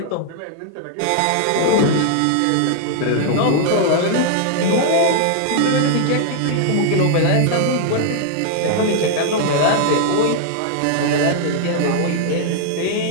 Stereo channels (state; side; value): different; both; correlation -0.01